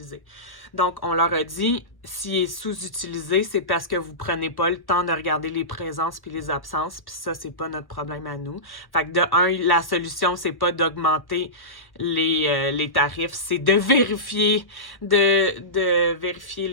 Donc, on leur a dit, s'il est sous-utilisé, c'est parce que vous prenez pas le temps de regarder les présences puis les absences, puis ça, c'est pas notre problème à nous. Fait que de un, la solution, c'est pas d'augmenter les tarifs, c'est de vérifier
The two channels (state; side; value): late; right; 1.0 ms